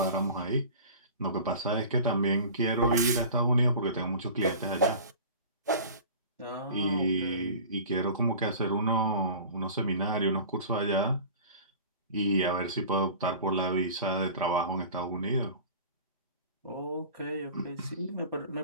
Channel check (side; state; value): both; inverted; correlation -0.40